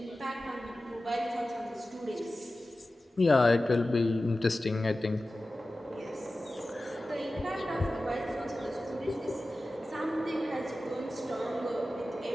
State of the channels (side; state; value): both; normal; correlation 0.95